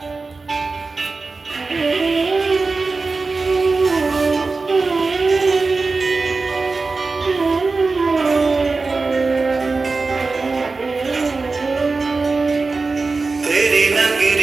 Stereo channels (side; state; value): left; quieter; 4.0 dB